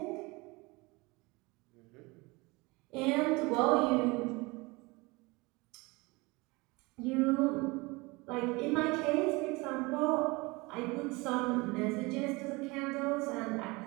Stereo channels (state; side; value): quieter; left; 24.7 dB